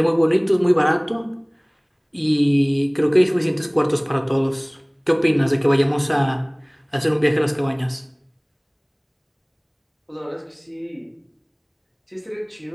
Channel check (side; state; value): both; identical; correlation 1.00